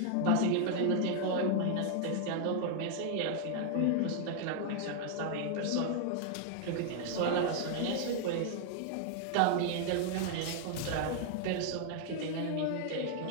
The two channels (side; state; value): both; different; correlation 0.00